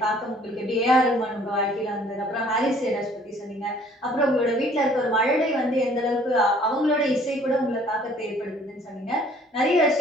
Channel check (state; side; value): normal; both; correlation 0.57